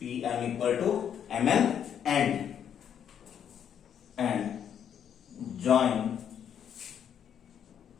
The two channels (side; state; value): right; quieter; 8.8 dB